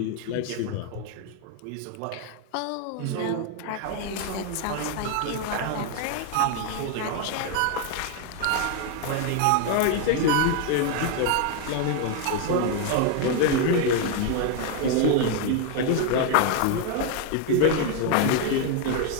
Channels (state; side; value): different; both; correlation 0.01